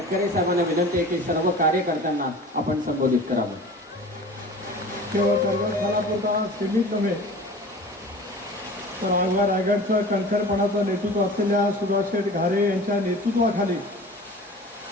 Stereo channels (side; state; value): both; normal; correlation 0.39